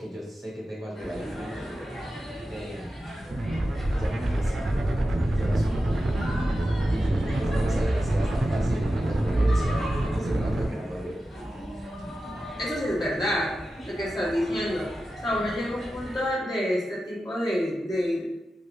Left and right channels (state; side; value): normal; both; correlation 0.92